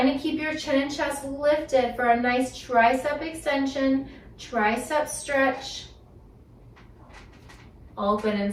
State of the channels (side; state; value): both; identical; correlation 1.00